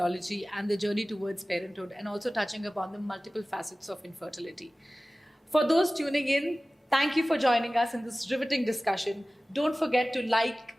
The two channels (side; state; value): both; normal; correlation 0.97